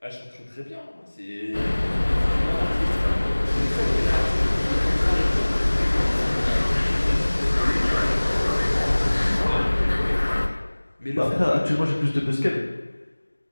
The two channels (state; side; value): inverted; both; correlation -1.00